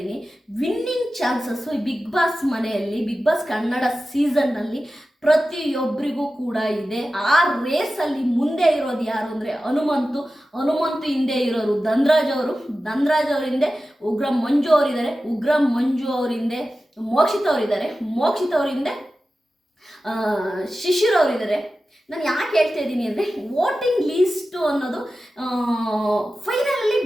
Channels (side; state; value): both; normal; correlation 0.94